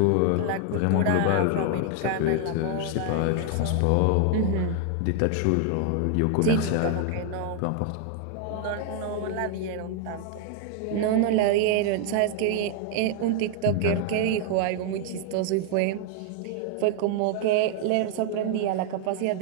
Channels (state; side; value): different; both; correlation 0.00